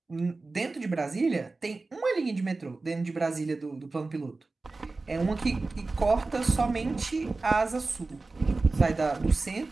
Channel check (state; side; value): quieter; left; 3.5 dB